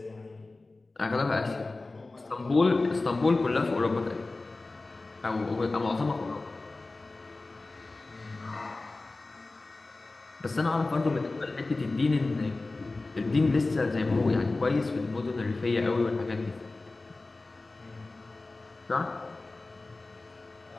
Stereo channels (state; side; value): quieter; right; 3.3 dB